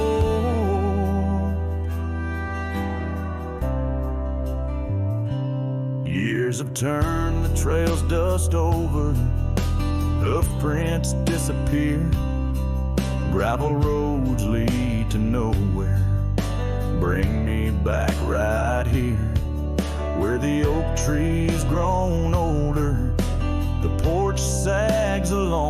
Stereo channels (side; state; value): both; identical; correlation 1.00